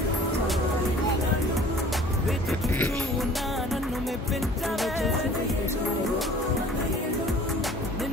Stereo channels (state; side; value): normal; both; correlation 0.49